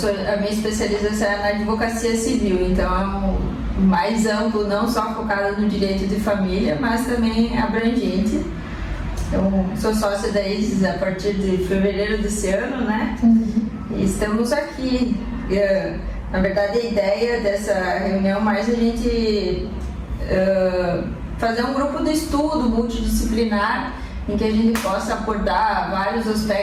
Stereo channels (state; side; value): identical; both; correlation 1.00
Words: minha especialização é na advocacia civil, então é mais amplo, não só focado no direito de família, mas também abrangente. Eu sou sócia da ISIS a partir de fevereiro desse ano, né? E estamos aqui. Na verdade, a ideia dessa reunião mais a gente fazer um grupo de estudo multidisciplinar em que a gente possa abordar vários